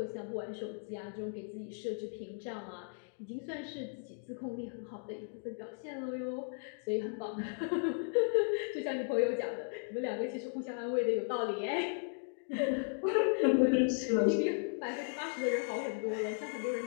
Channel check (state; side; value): silent; right; 54 dB below the other